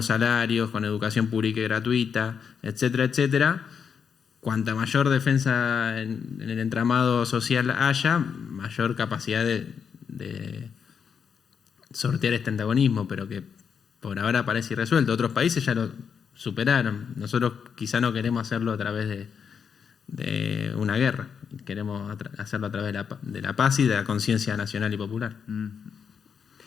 salarios, con educación pública y gratuita, etcétera, etcétera. Cuanta mayor defensa en el entramado social haya, mayor capacidad de sortear este antagonismo, pero que por ahora parece irresuelto. Otros países ya lo superaron. Nosotros quizá no queremos hacerlo a través de una guerra. Queremos hacerlo a través de la paz y de la conciencia nacional y popular.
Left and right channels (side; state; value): right; quieter; 6.8 dB